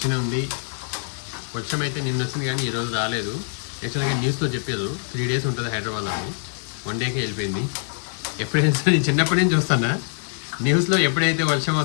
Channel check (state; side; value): silent; right; digital silence